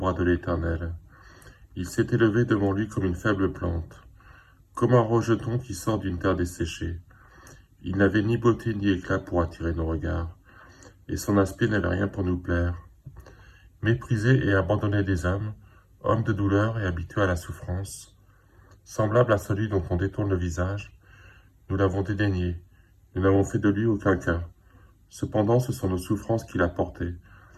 de l'Éternel? Il s'est élevé devant lui comme une faible plante, comme un rejeton qui sort d'une terre desséchée. Il n'avait ni beauté ni éclat pour attirer nos regards, et son aspect n'avait rien pour nous plaire. Méprisé et abandonné des hommes, homme de douleur et habitué à la souffrance, semblable à celui dont on détourne le visage, nous l'avons dédaigné, nous n'avons fait de lui aucun cas. Cependant, ce sont nos souffrances qu'il a portées,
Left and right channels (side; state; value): both; identical; correlation 1.00